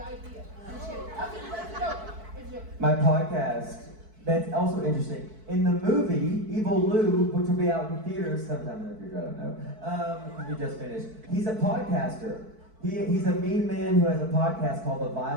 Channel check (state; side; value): late; left; 4.6 ms